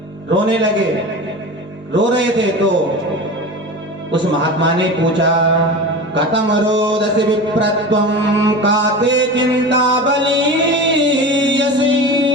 रोने लगे, रो रहे थे, तो उस महात्मा ने पूछा कथम रोदसी विप्रत्वं काते चिंता बलीयसी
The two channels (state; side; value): normal; both; correlation 0.30